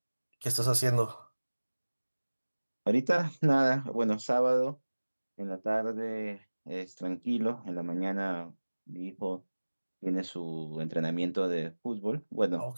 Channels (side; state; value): both; inverted; correlation -1.00